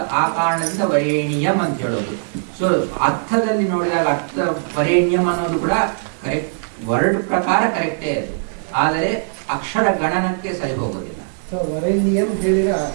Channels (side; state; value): left; silent; digital silence